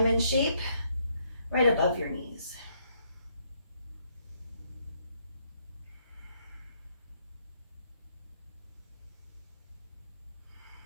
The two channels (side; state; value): both; inverted; correlation -0.72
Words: shape right above your knees.